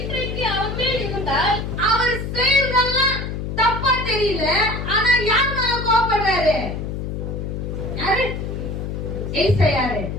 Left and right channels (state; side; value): noise; left; hum, 5 dB below the sound